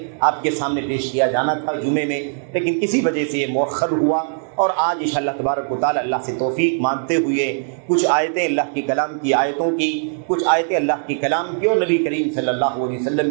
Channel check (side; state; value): left; silent; digital silence